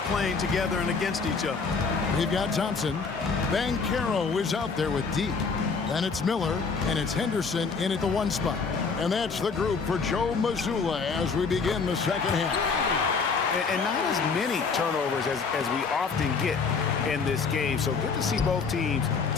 playing together and against each other. We've got Thompson. Mycareer is out there with D. Then it's Miller, and it's Henderson in at the 1 spot. And that's the group for Joe Mazzulla as we begin the second half. And not as many turnovers as we often get in this game. So good to see both teams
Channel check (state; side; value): quieter; right; 5.0 dB